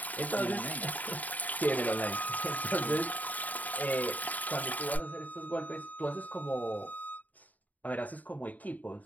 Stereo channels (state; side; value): late; right; 0.076 ms